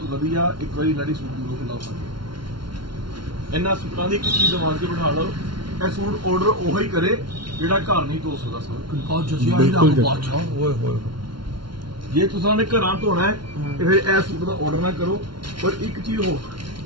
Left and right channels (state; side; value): late; left; 0.73 ms